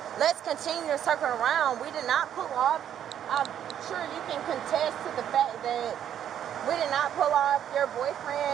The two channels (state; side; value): quieter; left; 10.0 dB